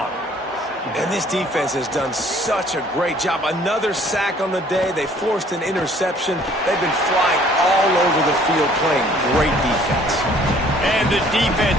And this defense has done such a great job. Another sack on the day. They forced an interception. They've been flying all over the field playing great defense. And the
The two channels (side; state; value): both; normal; correlation 0.57